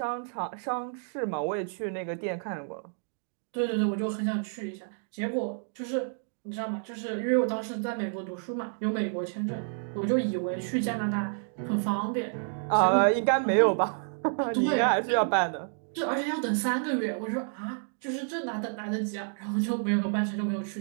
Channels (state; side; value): silent; left; 58 dB below the other